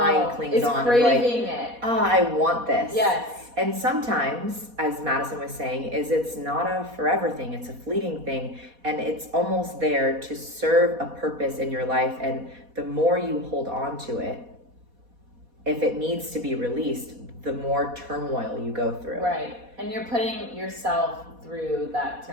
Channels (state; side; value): late; left; 4.2 ms